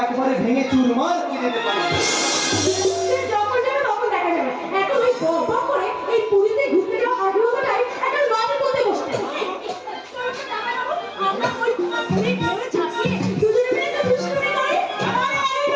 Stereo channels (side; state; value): both; identical; correlation 1.00